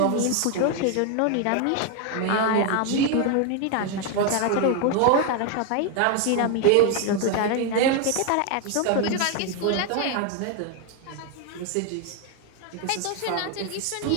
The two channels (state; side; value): different; both; correlation 0.01